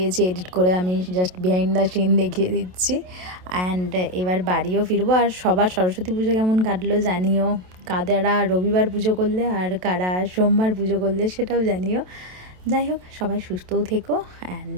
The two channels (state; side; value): late; left; 27 ms